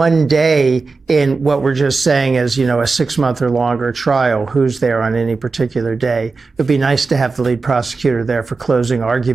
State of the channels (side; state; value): left; quieter; 4.2 dB